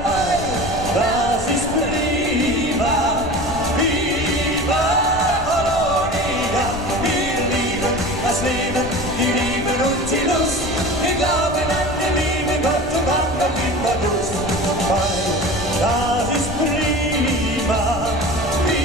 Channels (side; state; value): left; noise; rumble, 10 dB below the sound